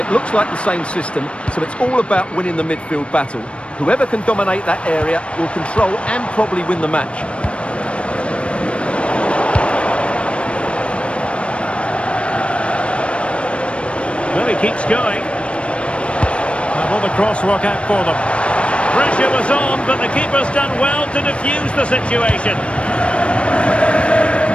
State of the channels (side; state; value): right; late; 0.060 ms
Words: looks like the same system, so it's all about winning the midfield battle. Whoever can dominate that area will control and probably win the match. Well, he keeps going. And will the cross work out for them? Pressure was on, but the keeper's done well to defuse the situation.